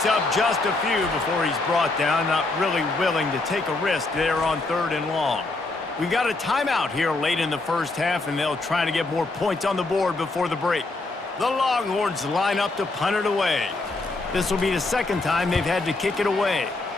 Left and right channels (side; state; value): right; quieter; 3.2 dB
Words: up just a few before he's brought down, not really willing to take a risk there on 3rd and long. We got a timeout here late in the first half, and they'll try to get more points on the board before the break. The Longhorns line up to punt it away. This will be the 2nd time they've had to kick it away.